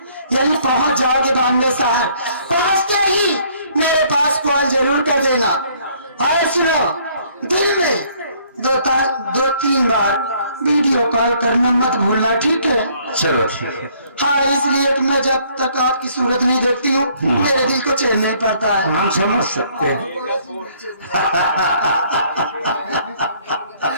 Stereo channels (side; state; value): both; inverted; correlation -0.62